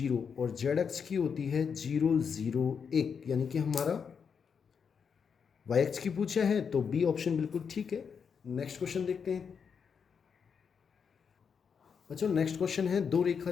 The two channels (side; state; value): right; quieter; 6.5 dB